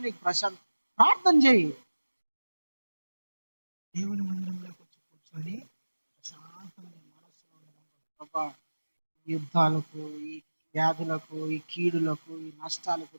నీకు ప్రశాంతం. ప్రార్థన చేయి, దేవుని మందిరంలో కూర్చొని ప్రశాంతమైన మనసులో ప్రభా, యుద్ధాలకు, ఈ వ్యాధులకు, ఈ కీడులకు, ఈ నష్టాలకు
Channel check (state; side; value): inverted; both; correlation -1.00